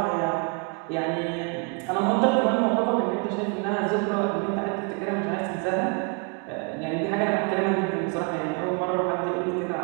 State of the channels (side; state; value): left; quieter; 35.1 dB